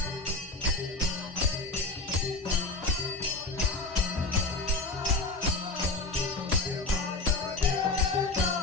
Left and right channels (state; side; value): quieter; right; 3.2 dB